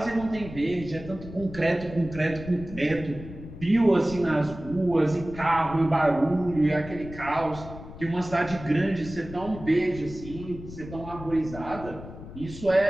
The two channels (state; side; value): noise; left; rumble, 13 dB below the sound